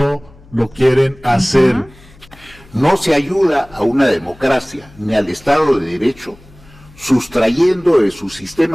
lo quieren hacer. No se ayuda a una democracia ni al Estado de Derecho sustrayendo de su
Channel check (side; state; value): left; noise; hum, 25 dB below the sound